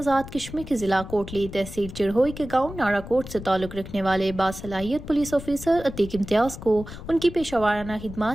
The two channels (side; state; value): left; noise; rumble, 12 dB below the sound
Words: کشمیر کے ضلع کوٹلی تحصیل چڑھوئی کے گاؤں نارا کوٹ سے تعلق رکھنے والے باصلاحیت پولیس آفیسر عتیق امتیاز کو ان کی پیشہ ورانہ